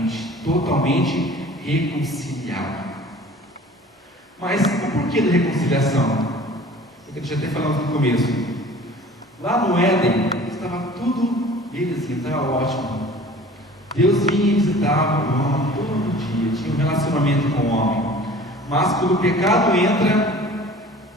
totalmente reconciliado. Mas o porquê da reconciliação? Eu já até falamos no começo. Lá no Éden estava tudo belezinha, estava ótimo. Deus vinha e visitava o homem todo dia, tinha um relacionamento com o homem. Mas quando o pecado entra,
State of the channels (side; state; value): both; normal; correlation 0.45